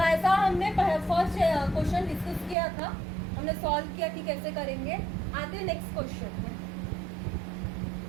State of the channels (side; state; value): left; drops out; at 2.6 s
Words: हमने फर्स्ट क्वेश्चन डिस्कस किया था, हमने सॉल्व किया कि कैसे करेंगे। आते हैं नेक्स्ट क्वेश्चन में।